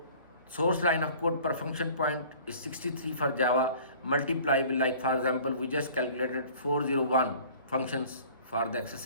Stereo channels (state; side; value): inverted; both; correlation -0.48